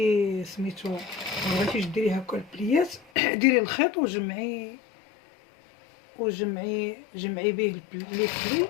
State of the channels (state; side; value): drops out; right; at 3.1 s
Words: سميتو بغيتيش ديري هكا البليات ديري الخيط وجمعي به لي بلي